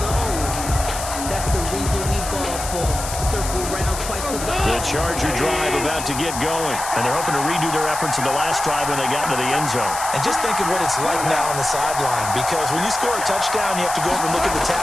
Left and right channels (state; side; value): noise; left; hiss, 7 dB below the sound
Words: The Charger drive about to get going. And they're hoping to redo their efforts in the last drive when they got into the end zone. And just think of what it's like now on the sideline, because when you score a touchdown, you have to go over and look at the